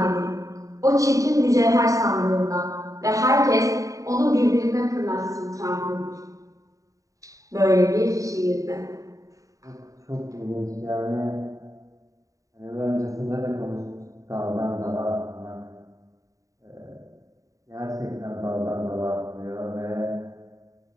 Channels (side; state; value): left; late; 0.16 ms